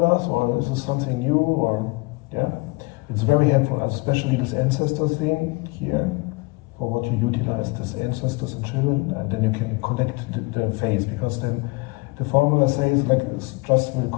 or is this something new? Or it's very helpful, especially this ancestors thing here, for what you utilize this ancestors and children, and then you can connect the phase, because then the formula says it's just will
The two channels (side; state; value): right; quieter; 26.4 dB